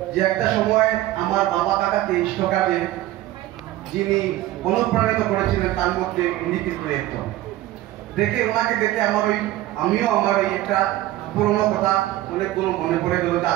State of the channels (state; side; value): quieter; left; 15.5 dB